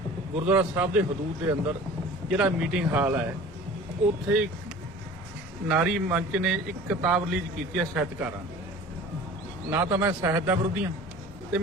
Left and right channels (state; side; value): normal; both; correlation 0.42